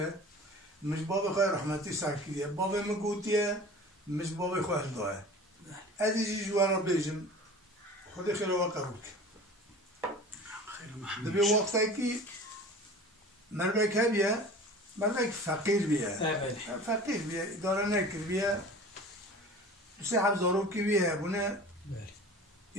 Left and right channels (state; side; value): normal; both; correlation 0.40